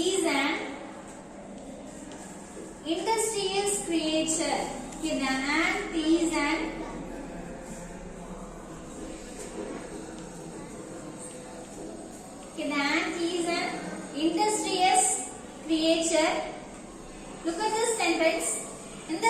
an industrious creature. Okay, the ant is an industrious creature. Look at this sentence. In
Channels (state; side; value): identical; both; correlation 1.00